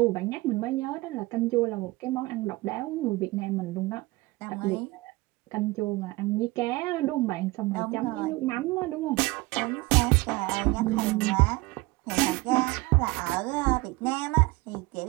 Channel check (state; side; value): quieter; left; 21.7 dB